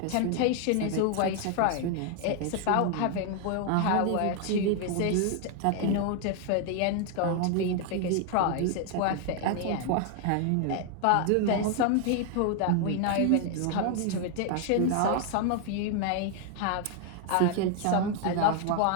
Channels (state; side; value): different; both; correlation 0.00